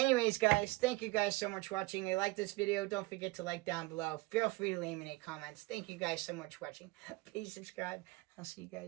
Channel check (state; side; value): quieter; left; 22.6 dB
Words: guys, thank you guys so much for watching. If you like this video, don't forget to like down below. Feel free to leave me any comments. Thank you guys so much for watching. Please subscribe. I'll see you